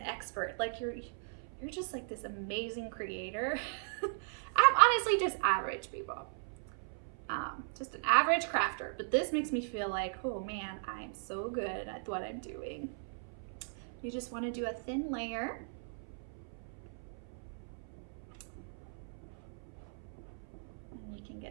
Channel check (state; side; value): silent; left; 53 dB below the other